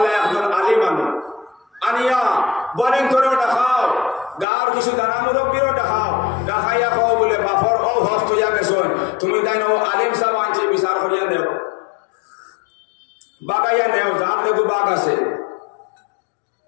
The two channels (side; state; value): right; drops out; at 4.5 s